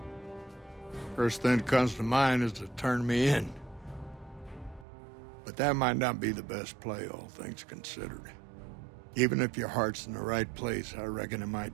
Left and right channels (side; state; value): left; drops out; at 4.9 s